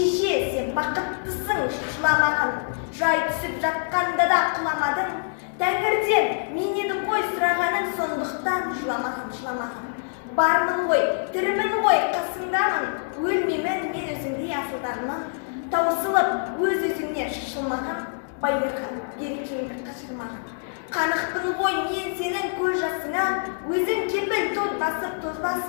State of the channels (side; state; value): right; silent; digital silence